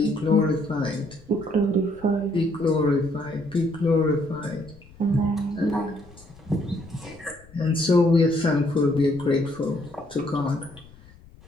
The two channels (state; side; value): noise; left; rumble, 23 dB below the sound